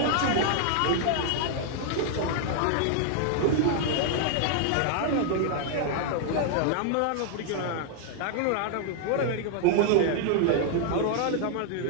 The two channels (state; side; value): different; both; correlation 0.00